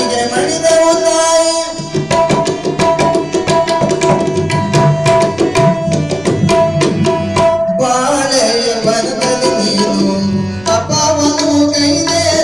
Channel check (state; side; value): noise; left; rumble, 24 dB below the sound